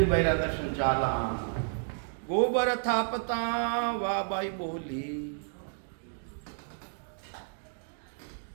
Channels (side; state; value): left; silent; digital silence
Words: बाई रा दर्शन चाला। गोबर थापता वा बाई बोली,